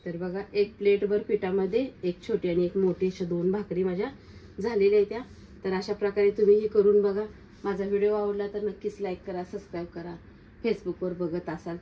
तर बघा, 1 प्लेटभर पिठामध्ये एक छोटी आणि एक मोठी अशा 2 भाकरी माझ्या झालेल्या आहेत त्या। तर अशा प्रकारे तुम्ही ही करून बघा। माझा व्हिडिओ आवडला तर नक्कीच लाईक करा, सबस्क्राईब करा। फेसबुकवर बघत असाल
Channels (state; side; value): identical; both; correlation 1.00